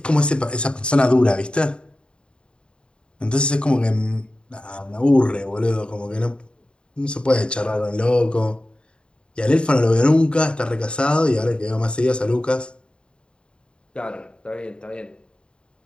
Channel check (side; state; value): right; late; 0.053 ms